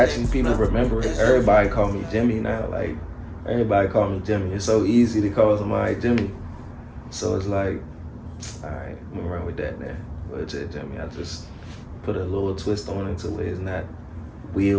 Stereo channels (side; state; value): both; identical; correlation 1.00